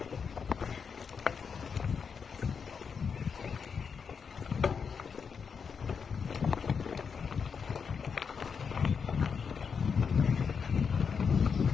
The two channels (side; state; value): right; quieter; 6.1 dB